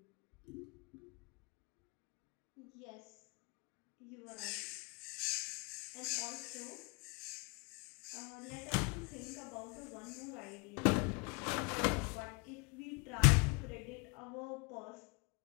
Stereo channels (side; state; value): right; quieter; 30.4 dB